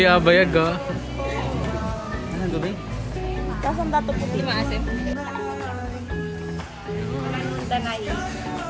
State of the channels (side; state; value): both; identical; correlation 1.00